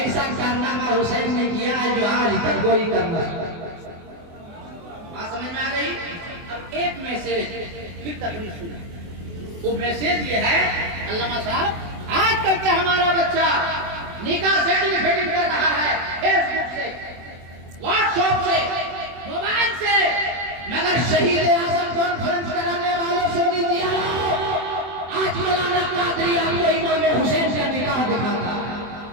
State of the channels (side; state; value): left; late; 24 ms